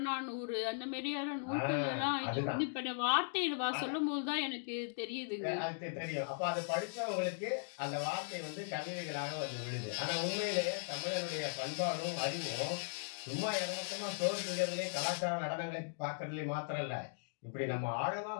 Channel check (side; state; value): right; silent; digital silence